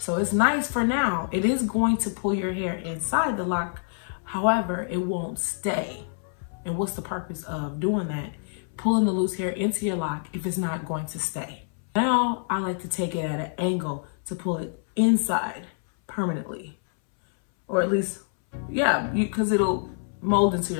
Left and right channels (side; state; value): right; silent; 61 dB below the other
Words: it's nice for now. It is going to pull your hair inside the lock. However, it won't stay. And what's the purpose of doing that? Pulling the loose hair into your lock if it's not going to stay. Now, I like to take it at an angle to pull it inside permanently. Or at least, yeah, because it'll mold into